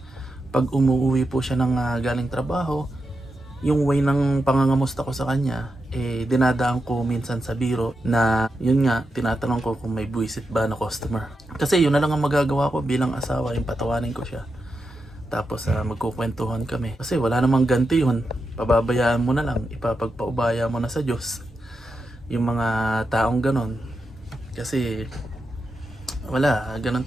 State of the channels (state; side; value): normal; both; correlation 0.87